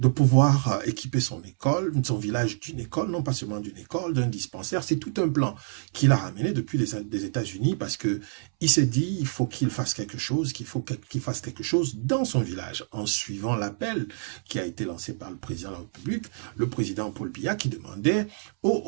pouvoir équiper son école, son village d'une école, non pas seulement d'une école, d'un dispensaire. C'est tout un plan qu'il a ramené depuis des États-Unis parce que il s'est dit, il faut qu'il fasse quelque chose, qu'il fasse quelque chose dans son village, en suivant l'appel qui a été lancé par le président de la République, le président Paul Biya, qui demandait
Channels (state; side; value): silent; left; 60 dB below the other